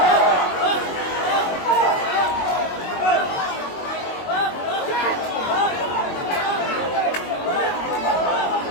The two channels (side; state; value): right; late; 22 ms